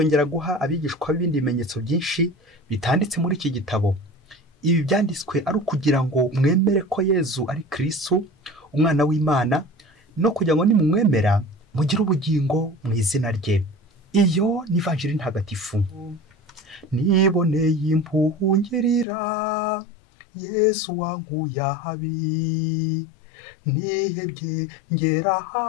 guha abigishwa ibindi bimenyetso byinshi bitanditse muri iki gitabo. ibi byanditswe ari ukugira ngo mwemere ko Yezu ari Kristo umwana w'Imana, no kugira ngo nimumwemera mugire ubugingo mu izina rye. Iyo ni ivanjiri ntagatifu. Niboneye impuhwe ungirira, Yesu wankuye ahabi, nihebye ngera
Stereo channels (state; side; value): drops out; right; at 19.1 s